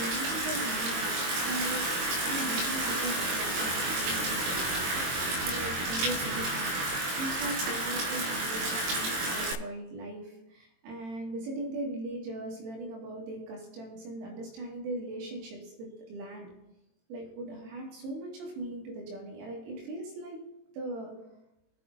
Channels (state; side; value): late; left; 22 ms